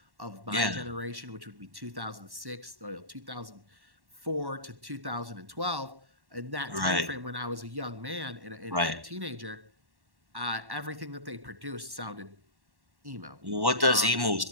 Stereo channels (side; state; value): left; late; 1.1 ms